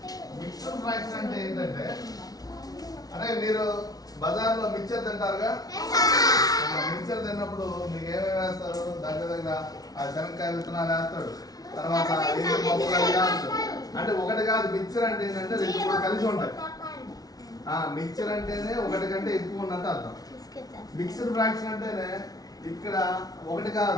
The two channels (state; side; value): late; right; 0.18 ms